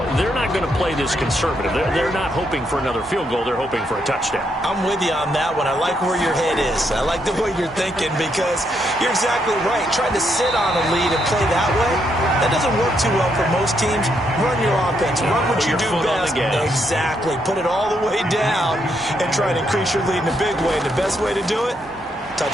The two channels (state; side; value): normal; both; correlation 0.77